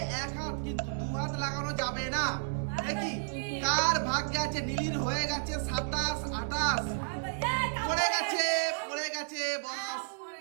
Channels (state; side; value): silent; left; digital silence